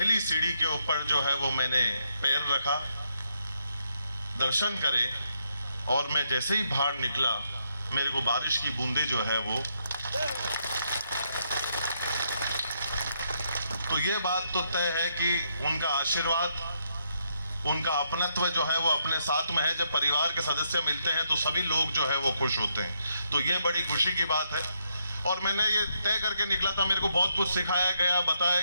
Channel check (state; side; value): inverted; both; correlation -0.77